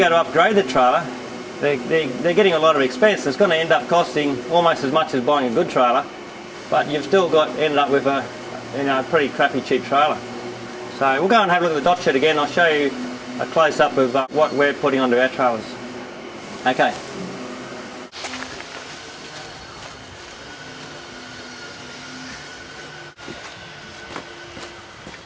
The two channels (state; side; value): identical; both; correlation 1.00